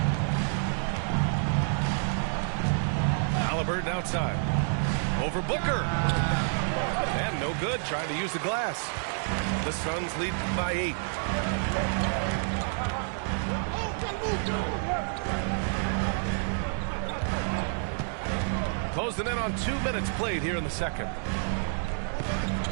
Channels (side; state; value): left; silent; 59 dB below the other